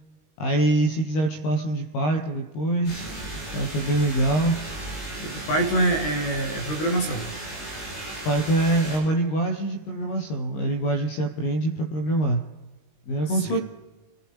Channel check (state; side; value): late; right; 19 ms